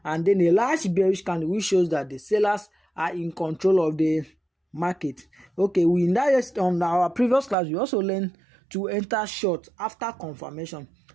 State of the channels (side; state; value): left; drops out; at 7.6 s